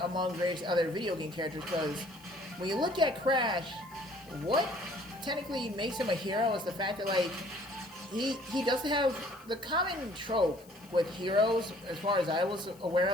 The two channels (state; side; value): noise; left; hiss, 25 dB below the sound